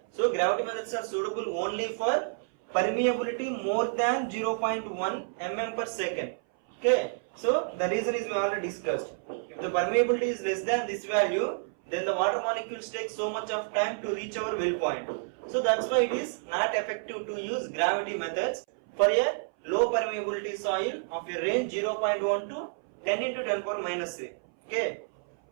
So gravity methods are suitable only for permeability more than 0.1 mm per second. Okay. So the reason is we already discussed. If the permeability is less than this value, then the water molecules take so much of time to reach our well point. So that's why it is not effective to use gravity methods for a low permeability soil of a range 0.1 to 10 into 10 power minus 3. Okay.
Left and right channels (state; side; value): silent; left; 58 dB below the other